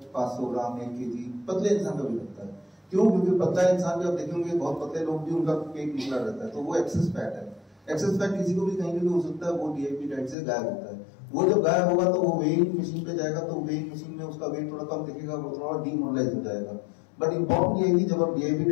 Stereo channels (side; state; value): right; drops out; at 10.4 s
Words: 500 ग्राम 1 kg, पतले इंसान का भी घटता है। क्यों? क्योंकि पतला इंसान भी आप देखेंगे बहुत पतले लोग भी उनका पेट निकला रहता है, तो वो एक्सेस फैट है। एक्सेस फैट किसी को भी कहीं भी हो सकता है, वो डीआईपी डाइट से गायब होता है। वो जब गायब होगा तो वो वेइंग मशीन पे जाएगा, तो वेइंग मशीन में उसका वेट थोड़ा कम दिखेगा, वो थोड़ा डीमोरलाइज हो जाएगा। बट इंपॉर्टेंट ये है कि जब आप डीआईपी